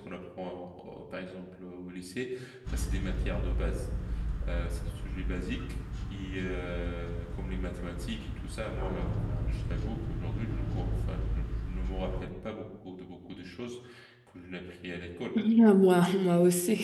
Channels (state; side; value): identical; both; correlation 1.00